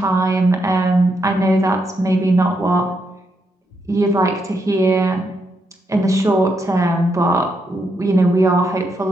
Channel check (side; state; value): both; normal; correlation 0.80